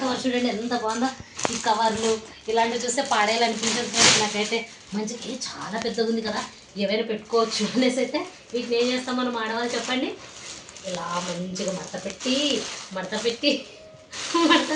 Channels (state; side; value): identical; both; correlation 1.00